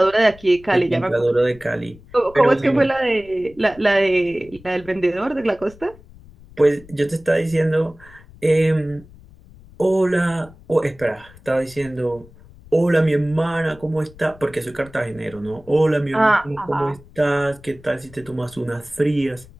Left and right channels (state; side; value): noise; left; rumble, 22 dB below the sound